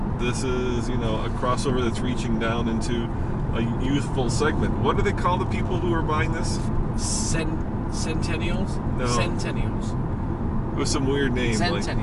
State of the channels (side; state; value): both; identical; correlation 1.00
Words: this is, a crossover that's reaching down into a youthful segment. What do they call the people who are buying this? Centennials? No. Centennials. It was some weird name.